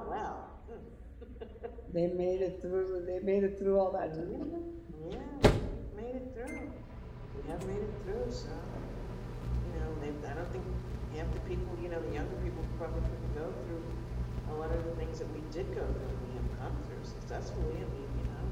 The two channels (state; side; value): identical; both; correlation 1.00